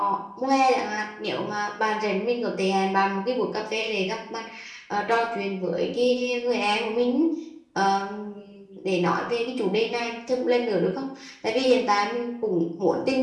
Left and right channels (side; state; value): both; identical; correlation 1.00